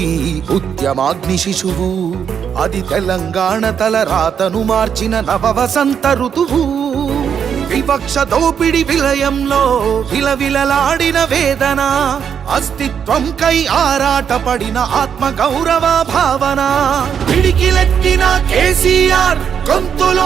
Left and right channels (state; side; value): quieter; left; 7.7 dB